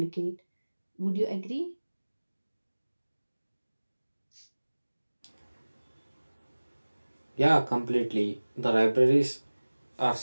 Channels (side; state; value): both; inverted; correlation -1.00